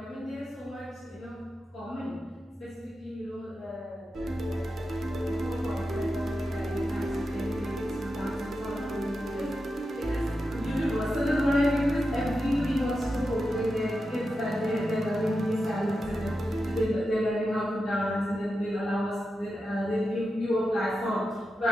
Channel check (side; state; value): both; normal; correlation 0.89